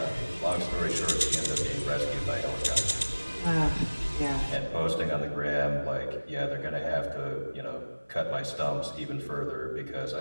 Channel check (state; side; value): inverted; both; correlation -1.00